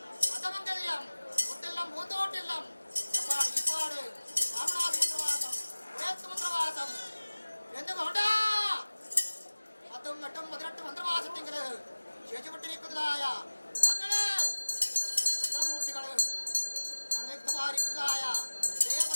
അന്തമംഗല്യം ഒട്ടില്ലം പൂന്തോട്ടില്ലം എപ്പാട് ഇപ്പാട് രാമനാഥമന്ത്രവാസം ഉടയത്തുമന്ത്രവാസം എന്ന് വേണ്ട 10, 8, 18 മന്ത്രവാസത്തിങ്കില് ശേഷിപ്പെട്ടിരിക്കുന്നതായ ഞങ്ങള് മന്ത്രമൂർത്തികള് സംയുക്തമായിരിക്കുന്നതായ ദേവ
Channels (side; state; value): both; inverted; correlation -1.00